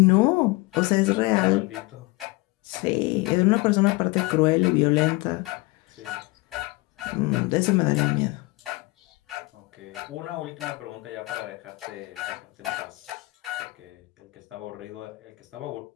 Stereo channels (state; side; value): quieter; right; 22.9 dB